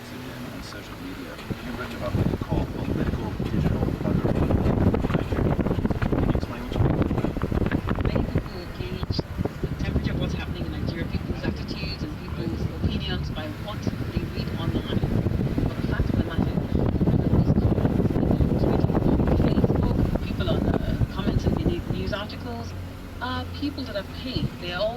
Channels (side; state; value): both; identical; correlation 1.00